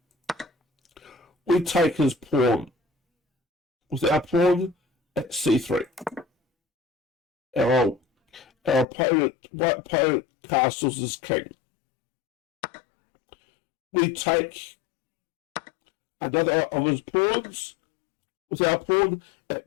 We take his pawn with our pawn at c3. Our white opponent castles his king. We take another of his pawns with our pawn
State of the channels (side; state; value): right; drops out; at 8.8 s